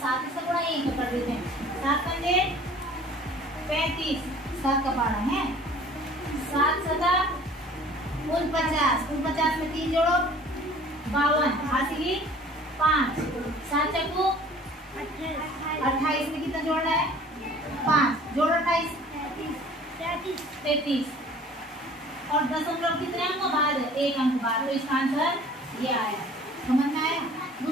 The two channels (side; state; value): both; normal; correlation 0.49